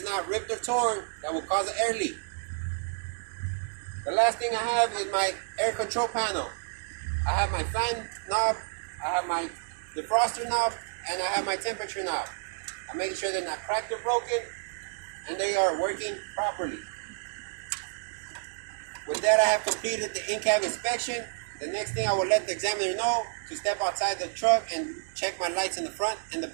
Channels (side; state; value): left; silent; 58 dB below the other